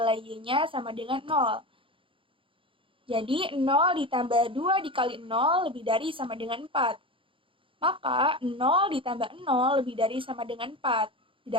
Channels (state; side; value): late; left; 0.25 ms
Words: Y-nya sama dengan 0. Jadi 0 ditambah 2 dikali 0 lebih dari sama dengan 4. Maka 0 ditambah 0 lebih dari sama dengan 4.